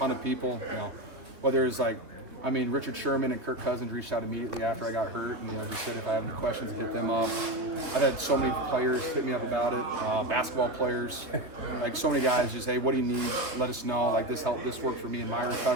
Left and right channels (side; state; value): left; late; 3.2 ms